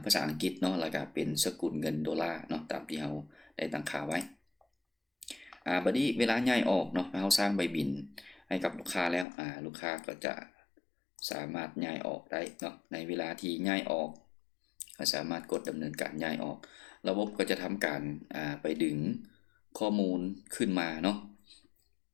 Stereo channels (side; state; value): right; drops out; at 9.2 s